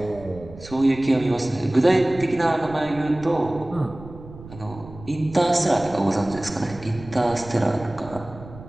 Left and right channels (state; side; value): noise; right; rumble, 17 dB below the sound